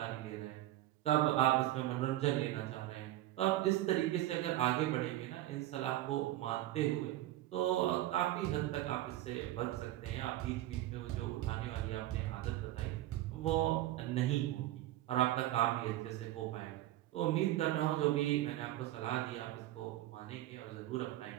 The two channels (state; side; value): quieter; left; 14.9 dB